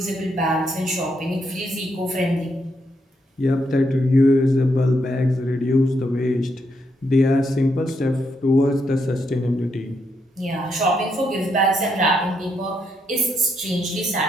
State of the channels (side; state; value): both; normal; correlation 0.78